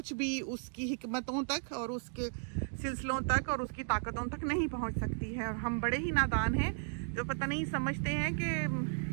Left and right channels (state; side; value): silent; left; digital silence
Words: भी उसकी हिकमतों तक और उसके सिलसिलों तक और उसकी ताकतों तक नहीं पहुंच सकती है। और हम बड़े ही नादान हैं जो पता नहीं समझते हैं